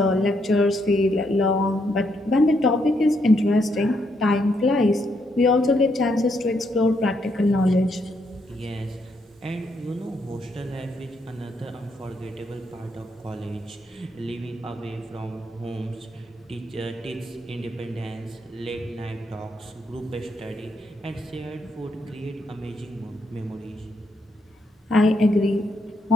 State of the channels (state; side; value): normal; both; correlation 0.76